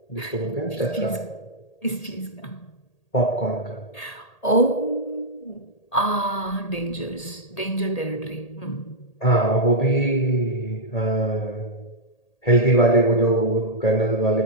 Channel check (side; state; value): right; late; 1.8 ms